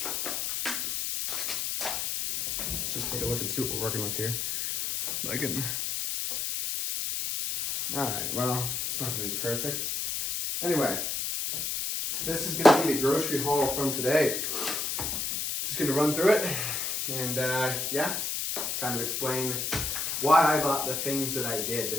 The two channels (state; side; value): noise; left; hiss, 1 dB below the sound